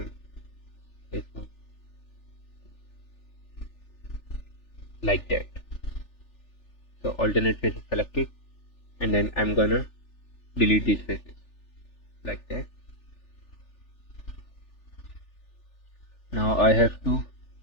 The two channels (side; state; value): right; late; 3.4 ms